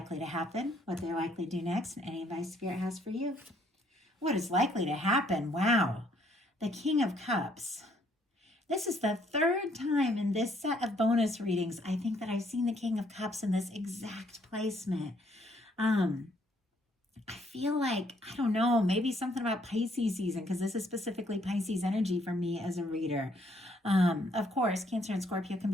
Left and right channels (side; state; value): both; normal; correlation 0.67